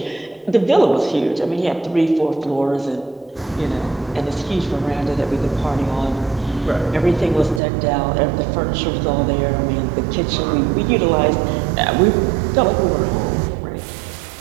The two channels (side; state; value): left; drops out; at 7.6 s